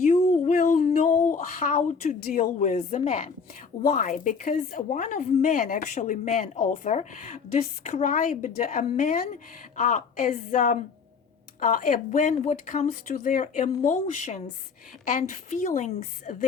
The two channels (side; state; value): right; quieter; 5.5 dB